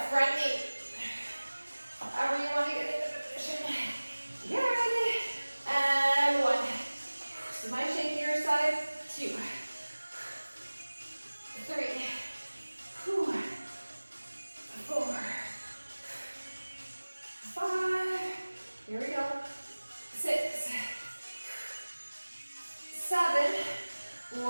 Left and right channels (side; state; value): both; inverted; correlation -1.00